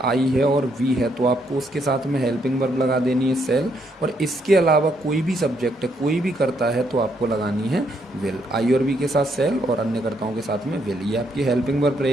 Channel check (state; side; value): normal; both; correlation 0.74